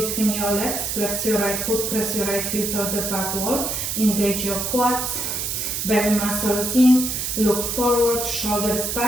your legs, flex your right foot, press your right heel toward the back wall, engage your quads, belly muscles in, look forward, shoulders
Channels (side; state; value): right; noise; hiss, 2 dB below the sound